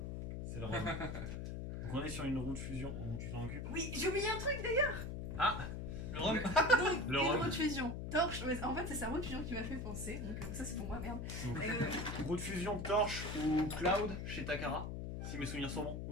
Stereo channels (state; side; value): noise; left; hum, 5 dB below the sound